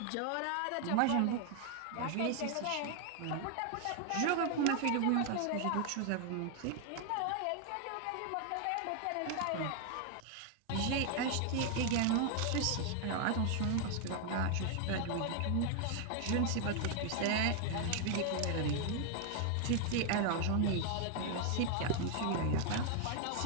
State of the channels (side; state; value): both; different; correlation 0.00